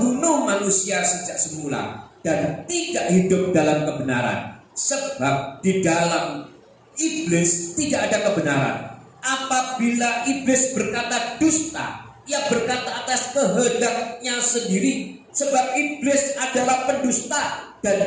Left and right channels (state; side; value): identical; both; correlation 1.00